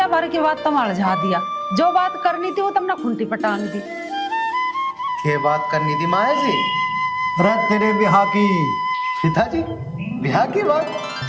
भर की बात तुम अलझा दिया, जो बात करनी थी वो तुमने खुंटी पटांग दी। ये बात करनी थी माँ ऐसी? रे तेरे बिहार की। पिताजी ब्याह की बात?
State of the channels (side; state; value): both; identical; correlation 1.00